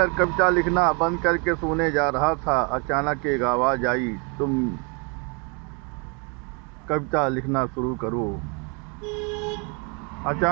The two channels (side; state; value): left; quieter; 34.3 dB